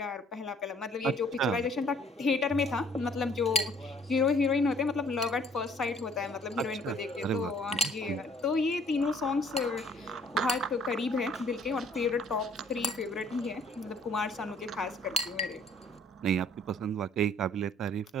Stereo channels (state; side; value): normal; both; correlation 0.58